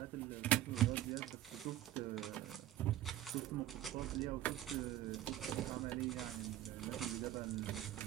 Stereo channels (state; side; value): quieter; left; 13.1 dB